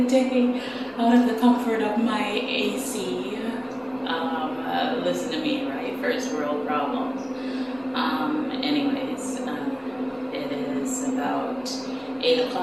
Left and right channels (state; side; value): identical; both; correlation 1.00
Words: out of the comfort of my AC. Listen to me, right? First world problems. It is about 8